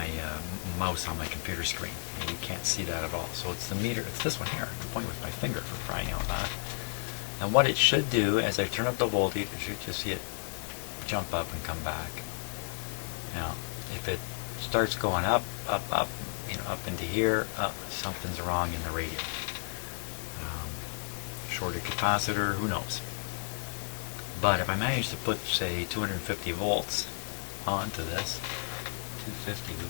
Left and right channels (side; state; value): right; silent; 56 dB below the other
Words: mouse on my computer screen, and you can't see that at all. So it's the meter, it's this one here. I'm pointing with my finger, for crying out loud. And what it should do, as I turn up the voltage, you should just see it jump up and come back. Now, if it starts going up, up, up, up into here, up, something's wrong in the radio. Shorted capacitor, who knows. But if I manage to put, say, 250 volts onto this, 250